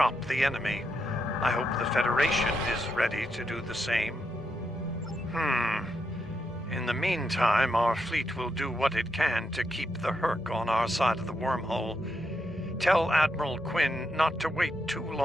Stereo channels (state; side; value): normal; both; correlation 0.82